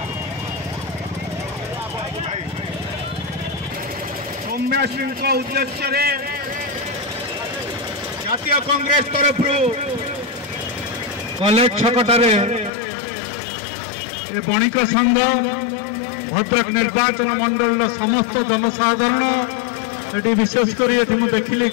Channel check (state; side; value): drops out; right; at 12.7 s